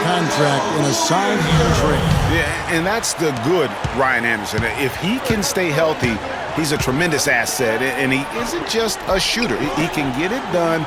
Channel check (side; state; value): both; identical; correlation 1.00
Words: contract in a sign and trade. Yeah, and that's the good Ryan Anderson. If he can stay healthy, he's a tremendous asset, and he isn't just a shooter. He can get it done